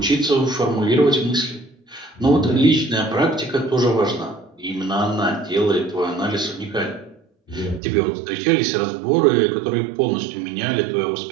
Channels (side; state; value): left; drops out; at 7.8 s